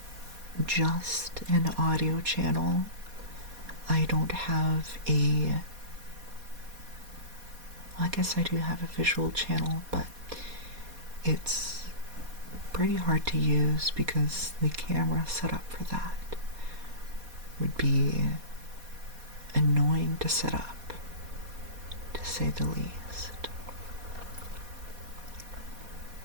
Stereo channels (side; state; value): left; late; 4.2 ms